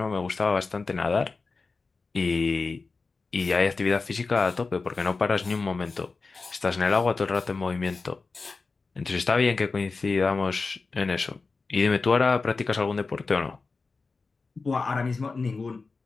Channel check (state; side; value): quieter; right; 4.1 dB